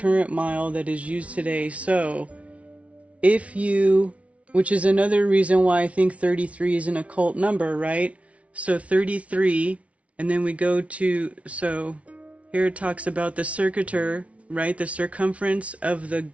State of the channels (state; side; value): late; left; 0.064 ms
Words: mile that is used today. So if you, which is another reason why I think 33 is an occult number, right? So 33, and then we go to, so here it talks about the circuiter, right? The circumference of the